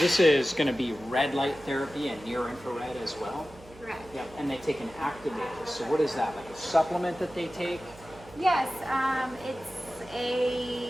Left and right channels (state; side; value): noise; right; hum, 21 dB below the sound